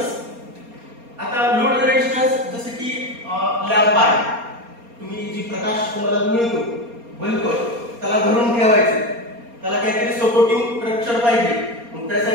आता लोड रेजिस्टन्स जसे की लॅम्प आहे, तुम्ही जी प्रकाश तुम्हाला मिळतो बल्ब, त्याला धरून ठेवायचे, त्याला काहीतरी सपोर्टिंग स्ट्रक्चर पाहिजे. मग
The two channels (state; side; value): late; left; 4.3 ms